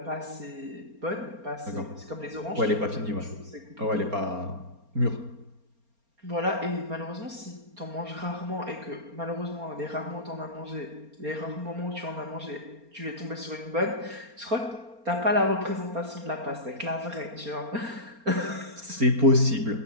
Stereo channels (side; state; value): left; late; 4.3 ms